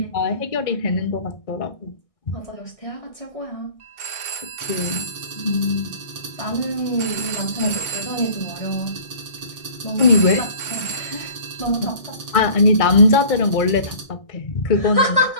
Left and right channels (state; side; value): late; right; 1.6 ms